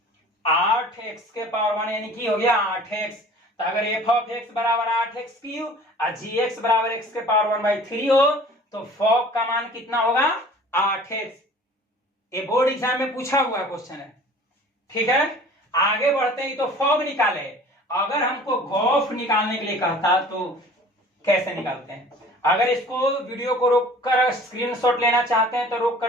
8x के पावर 1 यानी कि हो गया 8x। तो अगर f ऑफ x बराबर 8x क्यूब और gx बराबर x के पावर 1/3 हो, तो फॉग का मान कितना होगा, 8x। ये बोर्ड एग्जाम में पूछा हुआ क्वेश्चन है। ठीक है, आगे बढ़ते हैं। तो फॉग निकाले, अगर हमको गॉफ निकालने के लिए कहता तो कैसे निकालते हैं? अगर इसको वीडियो को रोककर स्क्रीनशॉट लेना चाहते हैं तो रोक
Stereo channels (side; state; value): both; normal; correlation 0.47